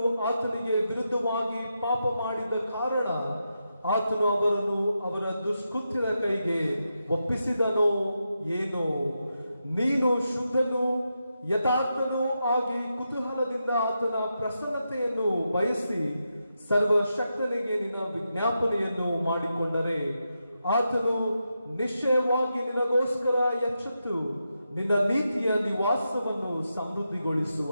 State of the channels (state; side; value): inverted; both; correlation -0.86